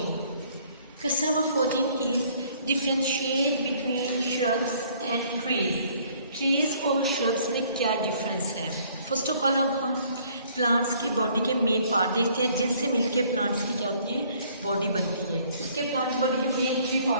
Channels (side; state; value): both; inverted; correlation -0.60